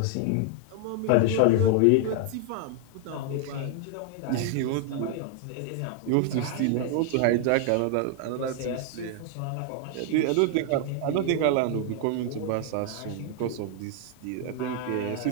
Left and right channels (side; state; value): both; different; correlation 0.00